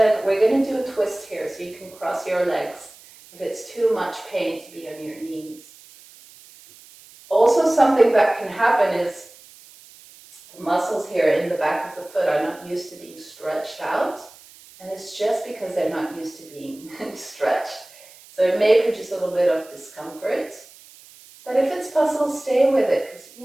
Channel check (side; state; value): right; noise; hiss, 23 dB below the sound